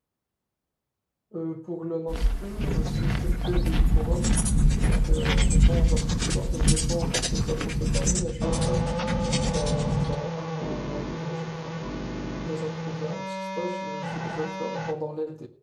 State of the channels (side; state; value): both; identical; correlation 1.00